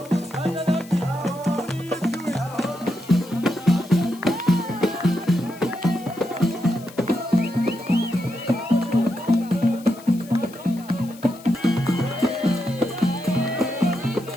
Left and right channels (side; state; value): left; noise; hiss, 22 dB below the sound